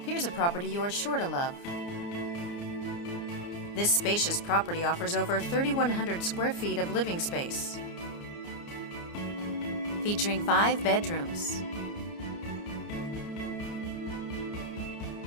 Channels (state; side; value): late; right; 29 ms